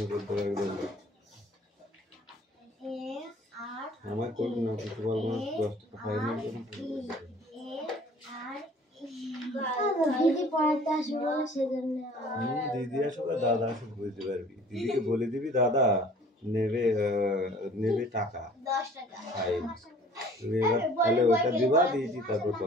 করতে লাগবে আমার কোন না ফুটবল ম্যাচ 10 টাকা ফাইনাল দিদি পড়াতে আসবে বলে সেজন্য দিদি আসবে দাদা আসবে বুঝতে পারবি দিদিকে বলে দিবি দাদা নেবে টাকা 10 টাকা ফাইন তুমি এবার তাহলে ওটা দিবা দিদি তারপর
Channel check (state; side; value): normal; both; correlation 0.51